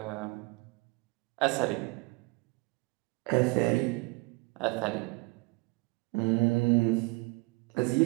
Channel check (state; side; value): quieter; left; 26.7 dB